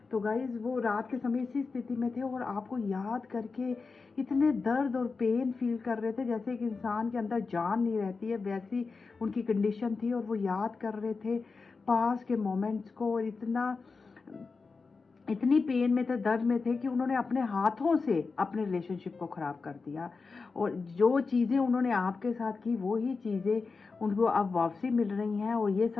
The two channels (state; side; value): quieter; right; 4.4 dB